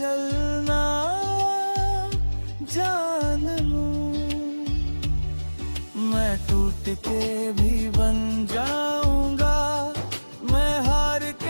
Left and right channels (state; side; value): inverted; both; correlation -1.00